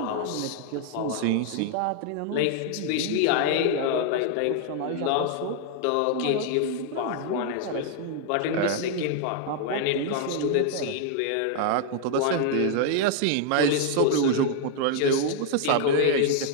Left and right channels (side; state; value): both; different; correlation 0.00